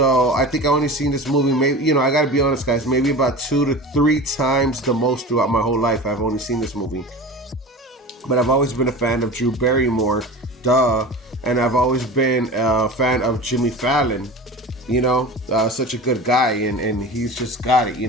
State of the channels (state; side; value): normal; both; correlation 0.33